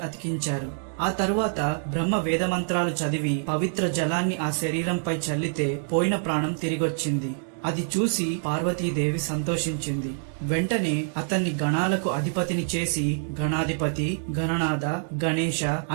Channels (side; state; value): left; silent; digital silence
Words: అతికించారు. ఆ తరువాత బ్రహ్మ వేదమంత్రాలు చదివి పవిత్ర జలాన్ని ఆ శరీరంపై చల్లితే పోయిన ప్రాణం తిరిగొచ్చింది. అది చూసి పార్వతీదేవి సంతోషించింది. వెంటనే అతన్ని గణాలకు అధిపతిని చేసి గణాధిపతి, గణనాథ, గణేశ